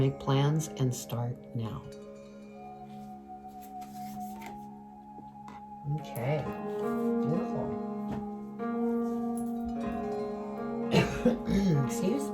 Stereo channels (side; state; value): both; identical; correlation 1.00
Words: plans and start now. Okay, beautiful. Excuse